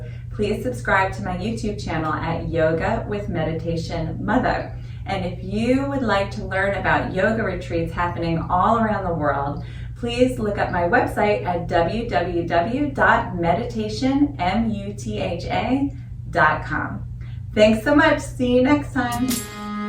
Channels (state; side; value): identical; both; correlation 1.00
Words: please subscribe to my YouTube channel at Yoga with Meditation Mutha. And if you would like to learn about yoga retreats happening all around the world, please look up my website at www.meditationmutha.com. Thanks so much. See you next time.